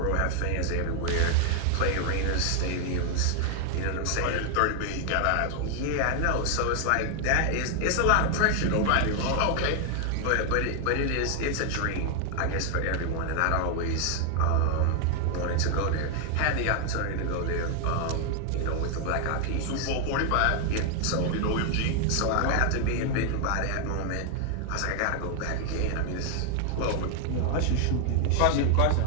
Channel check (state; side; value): different; both; correlation 0.00